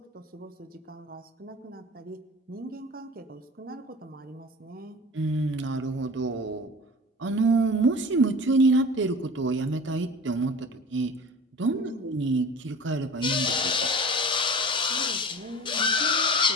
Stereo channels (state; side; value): normal; both; correlation 0.37